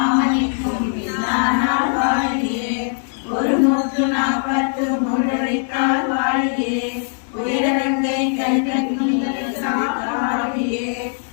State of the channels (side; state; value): right; silent; 62 dB below the other